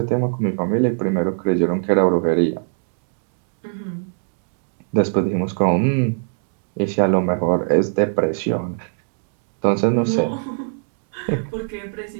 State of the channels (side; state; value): left; silent; digital silence